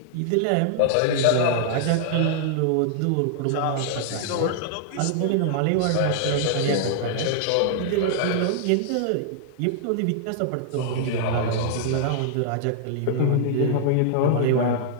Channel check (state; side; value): different; both; correlation -0.01